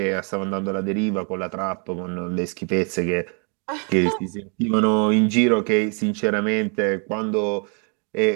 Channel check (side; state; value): left; quieter; 37.2 dB